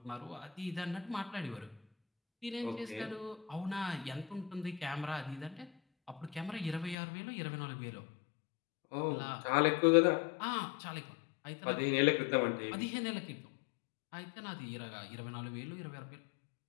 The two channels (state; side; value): drops out; right; at 7.0 s